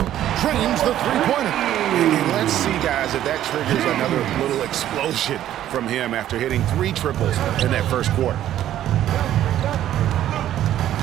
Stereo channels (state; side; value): quieter; left; 12.1 dB